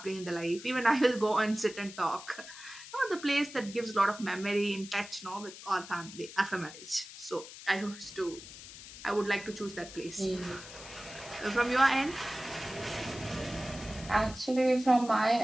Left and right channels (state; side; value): noise; left; hiss, 14 dB below the sound